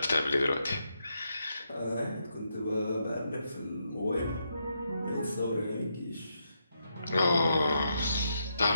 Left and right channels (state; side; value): inverted; both; correlation -0.81